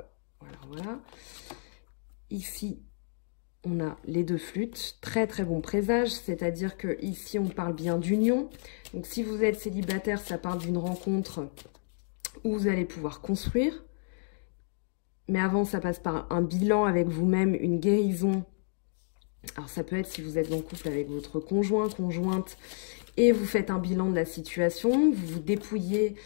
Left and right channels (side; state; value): right; silent; digital silence